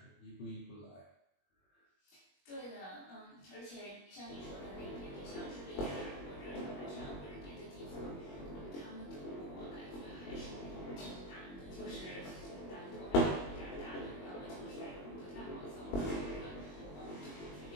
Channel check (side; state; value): right; late; 21 ms